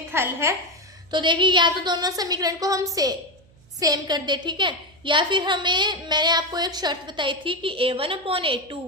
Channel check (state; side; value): noise; right; hum, 29 dB below the sound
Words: हल है। तो देखिए या तो दोनों समीकरण को हम सेम कर दे, ठीक है, या फिर मैंने आपको एक शर्त बताई थी कि